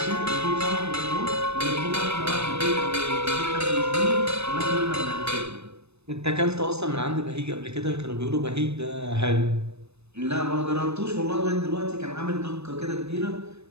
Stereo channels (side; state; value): left; late; 0.80 ms